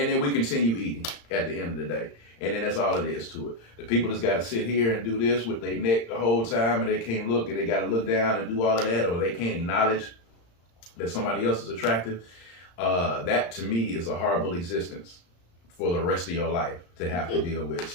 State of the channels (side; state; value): right; late; 35 ms